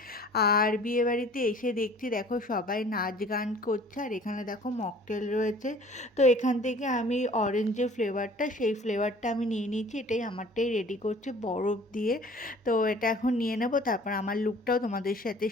আর বিয়েবাড়িতে এসে দেখছি দেখো সবাই নাচ গান করছে, আর এখানে দেখো মকটেল রয়েছে। তো এখান থেকে আমি অরেঞ্জ যে ফ্লেভারটা, সেই ফ্লেভারটা আমি নিয়ে নিয়েছি। এটাই আমারটাই রেডি করছে বরফ দিয়ে। তো এটা এখন নিয়ে নেব, তারপর আমার লুকটাও তোমাদের সাথে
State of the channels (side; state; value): both; normal; correlation 0.50